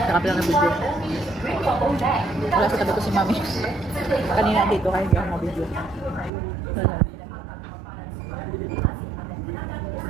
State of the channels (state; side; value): drops out; left; at 6.3 s